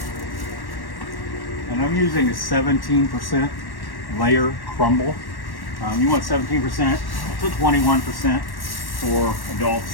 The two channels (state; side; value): late; right; 1.1 ms